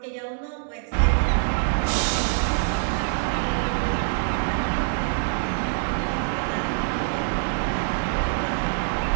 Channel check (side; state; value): left; silent; 62 dB below the other